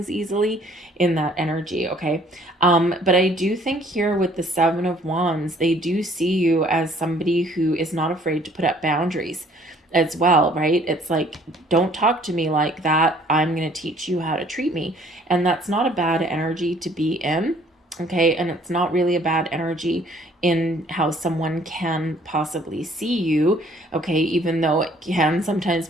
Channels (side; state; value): both; normal; correlation 0.59